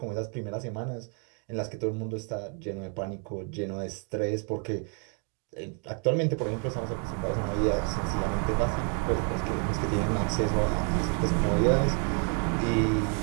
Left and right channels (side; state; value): left; quieter; 39.7 dB